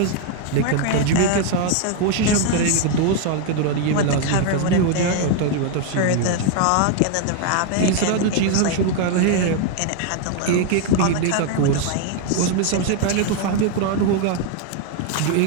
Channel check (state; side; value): different; both; correlation 0.01